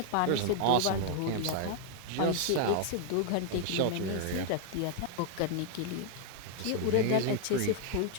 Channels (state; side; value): different; both; correlation 0.00